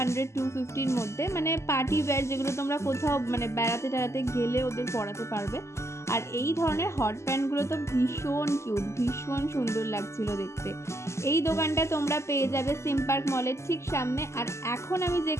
মধ্যে, মানে পার্টি ওয়্যার যেগুলো তোমরা কোথাও মানে বেড়াতে টেড়াতে গেলে ওদের পরাতে পারবে। আর এই ধরনের হট প্যান্টগুলো তো ভীষণ কিউট, ভীষণ সুন্দর লাগছিল দেখতে। এই দোকানটা তোমরা পেয়ে যাবে সিম পার্ক মলের ঠিক সামনে। আর এখন আমি যে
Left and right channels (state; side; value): late; right; 0.13 ms